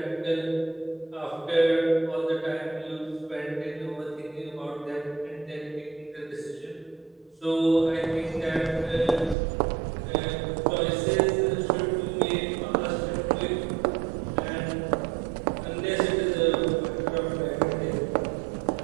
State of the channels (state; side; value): drops out; left; at 9.3 s